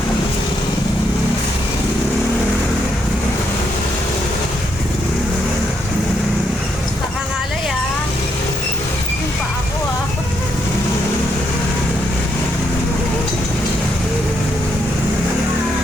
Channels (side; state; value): both; normal; correlation 0.77